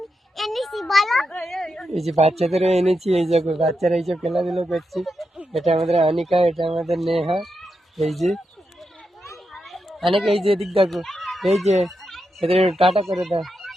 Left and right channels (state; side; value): normal; both; correlation 0.86